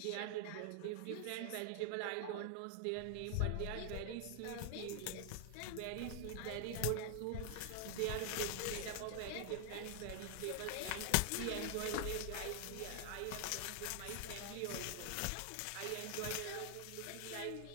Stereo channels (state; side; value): different; both; correlation 0.00